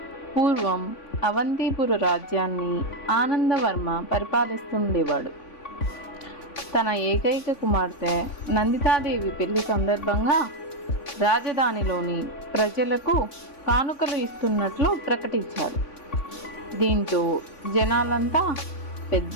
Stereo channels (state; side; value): late; right; 3.5 ms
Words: పూర్వం అవంతిపుర రాజ్యాన్ని ఆనందవర్మ పరిపాలిస్తుండేవాడు. తన ఏకైక కుమార్తె నందితాదేవి పెళ్లి సందర్భంగా రాజధానిలోని ప్రజలకు కానుకలు ఇస్తున్నట్లు ప్రకటించారు. దీంతో జనాలంతా